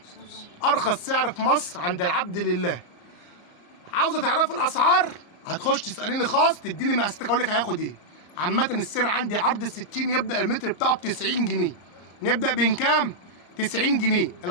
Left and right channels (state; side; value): late; right; 34 ms